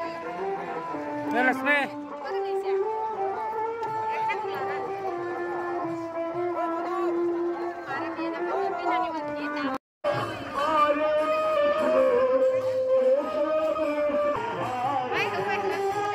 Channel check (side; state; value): both; identical; correlation 1.00